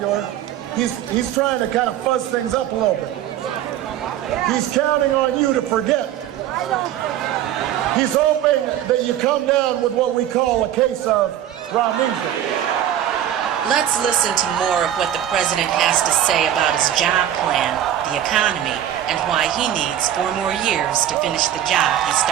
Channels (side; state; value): left; quieter; 11.1 dB